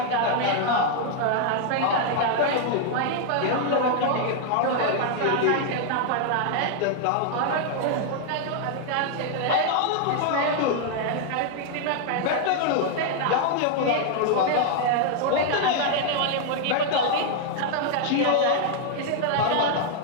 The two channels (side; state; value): both; different; correlation 0.00